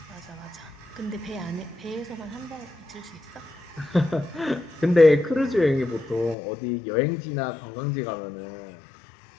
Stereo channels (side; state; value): right; drops out; at 6.4 s